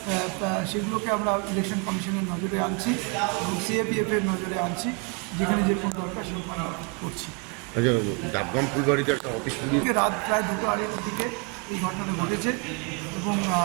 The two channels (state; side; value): quieter; left; 32.5 dB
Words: আমরা ইলেকশন কমিশনের নজরে আনছি এবং সিএপিএফের নজরে আনছি, যেখানে যেরকম দরকার সেরকম আমরা করছি। ডাবগ্রাম ফুলবাড়িতে একটা অফিস রাত প্রায় 2:30টার দিকে এই ঘটনাটা ঘটেছে এবং